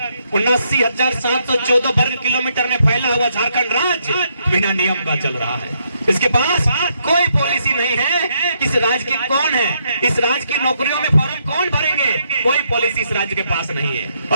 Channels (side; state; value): both; inverted; correlation -0.75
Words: 79,714 वर्ग किलोमीटर में फैला हुआ झारखंड राज्य बिना नियम का चल रहा है। इसके पास कोई पॉलिसी नहीं है। इस राज्य की कौन है? इस राज्य की नौकरियों में फॉर्म कौन भरेंगे? कोई पॉलिसी इस राज्य के पास नहीं है।